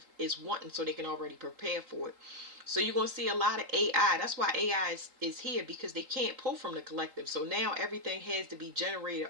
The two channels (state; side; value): late; left; 3.8 ms